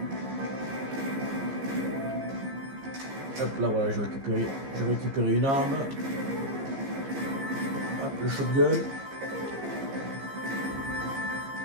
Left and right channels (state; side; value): late; left; 15 ms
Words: Hop là, voilà, j'ai récupéré une arme. Hop, le shotgun.